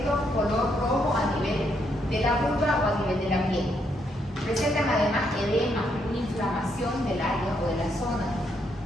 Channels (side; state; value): both; normal; correlation 0.76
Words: Color rojo a nivel de la vulva o a nivel de la piel. Presentan además edema, una inflamación del área o de la zona.